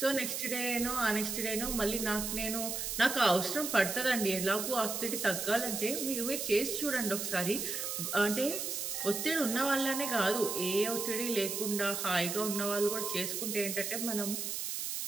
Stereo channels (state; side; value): noise; right; hiss, 3 dB below the sound